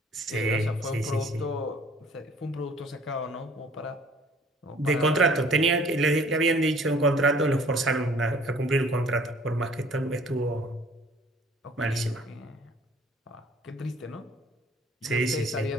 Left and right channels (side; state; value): both; normal; correlation 0.54